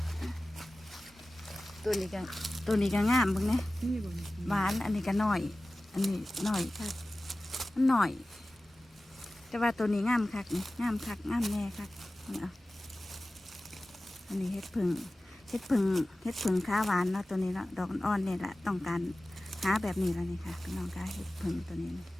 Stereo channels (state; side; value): normal; both; correlation 0.96